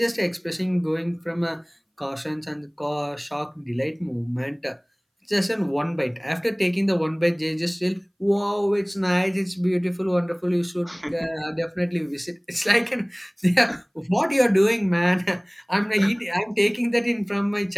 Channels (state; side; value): identical; both; correlation 1.00